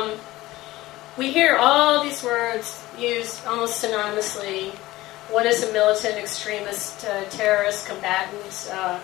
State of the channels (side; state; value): right; quieter; 17.8 dB